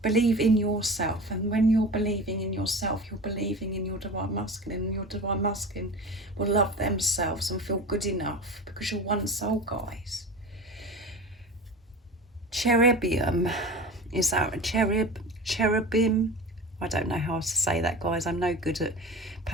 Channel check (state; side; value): normal; both; correlation 0.33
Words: believe in yourself, and when you're believing in yourself, you're believing in your divine masculine, and your divine masculine will love themselves and feel good enough, because you're one soul, guys. Cherubim, is that a cherubim? I don't know how to say that, guys. I'm no good at